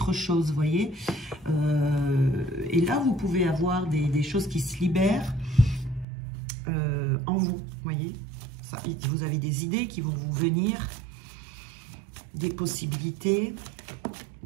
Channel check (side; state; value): left; drops out; at 6.1 s